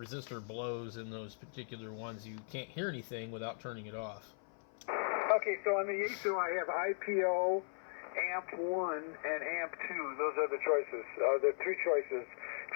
blows in those particular ones, you can't hear anything without turning it off. Okay, so on the ASU I have IPO, AMP1, and AMP2. Those are the choices. The three choices.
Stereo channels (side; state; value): right; silent; 52 dB below the other